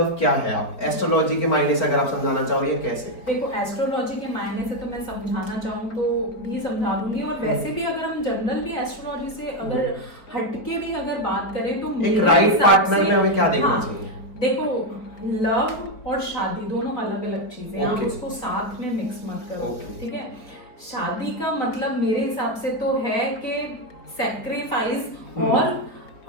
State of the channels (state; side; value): late; right; 4.5 ms